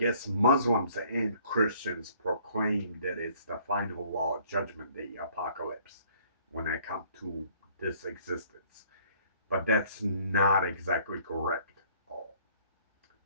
Muslims and Christians proclaim that it's the final judgment day, apocalypse, when I come to this existence. But that's not exactly correct.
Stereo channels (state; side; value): inverted; both; correlation -0.59